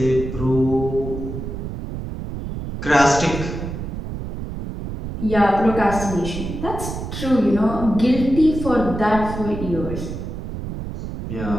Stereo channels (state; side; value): noise; right; rumble, 7 dB below the sound